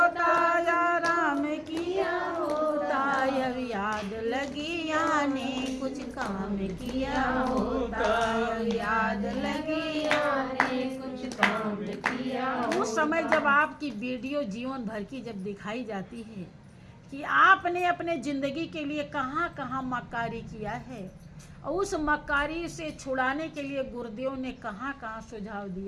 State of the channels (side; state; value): both; identical; correlation 1.00